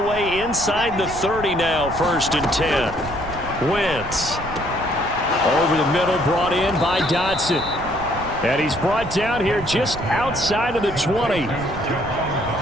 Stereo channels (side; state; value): right; noise; rumble, 13 dB below the sound